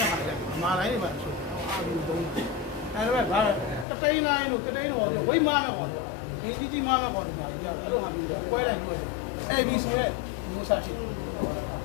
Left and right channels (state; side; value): drops out; right; at 3.9 s